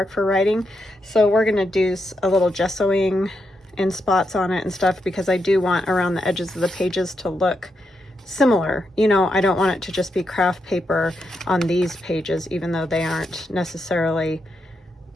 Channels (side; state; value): both; normal; correlation 0.83